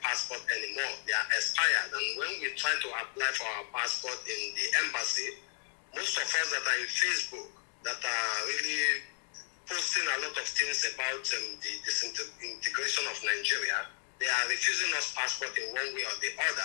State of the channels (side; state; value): right; silent; 55 dB below the other